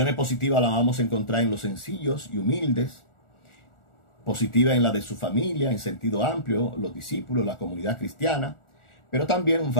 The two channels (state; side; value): late; right; 1.4 ms